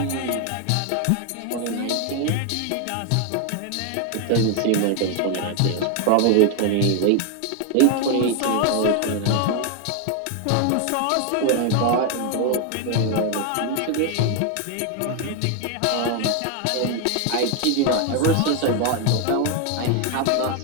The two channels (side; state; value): both; different; correlation 0.01